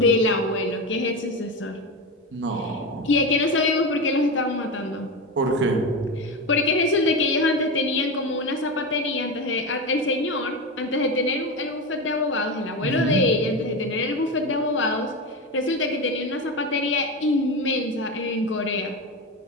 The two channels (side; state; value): both; normal; correlation 0.19